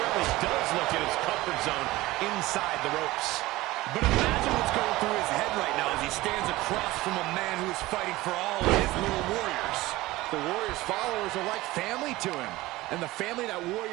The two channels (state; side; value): quieter; left; 18.6 dB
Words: does look at his comfort zone inside the ropes. But imagine what's going through his head right now as he stands across from a man who is fighting for all of his little warriors. The Warrior's followers are like family to him. And the family that